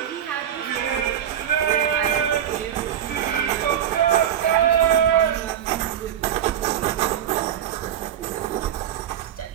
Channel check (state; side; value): quieter; left; 9.9 dB